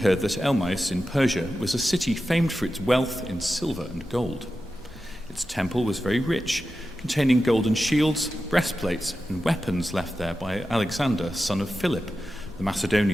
that Elmais in Persia was a city famed for its wealth in silver and gold. Its temple was very rich, containing golden shields, breastplates, and weapons left there by Alexander, son of Philip, the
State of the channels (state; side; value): normal; both; correlation 0.92